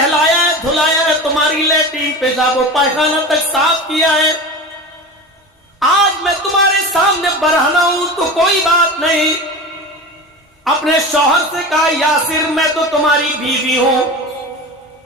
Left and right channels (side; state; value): both; normal; correlation 0.30